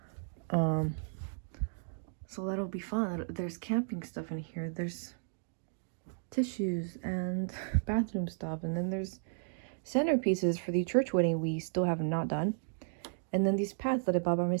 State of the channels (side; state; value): left; silent; digital silence